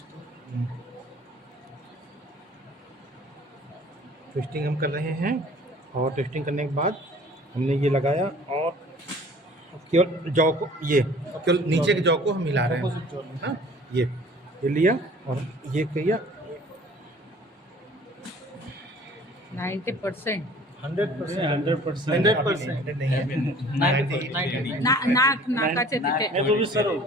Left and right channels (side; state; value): both; normal; correlation 0.49